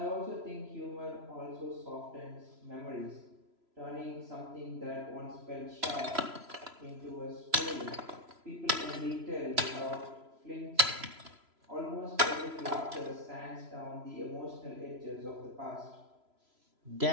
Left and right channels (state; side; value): late; left; 3.0 ms